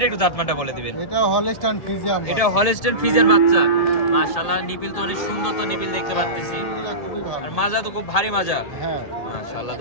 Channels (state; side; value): late; right; 1.8 ms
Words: একটু জাতমানটা বলে দিবেন। এটা হলস্টাইন ফ্রিজিয়ান। এটা হলস্টাইন ফ্রিজিয়ান বাচ্চা। মাশাআল্লাহ, নিপিল তো অনেক সুন্দর, তো নিপিল দেখতে পাচ্ছি। আর মাজা তো খুব ভারী মাজা। হ্যাঁ মাশাআল্লাহ,